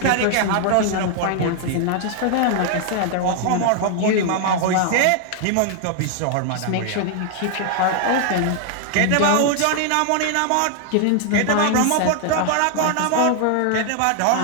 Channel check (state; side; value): different; both; correlation 0.00